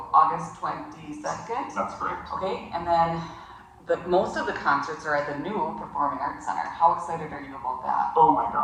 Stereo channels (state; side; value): identical; both; correlation 1.00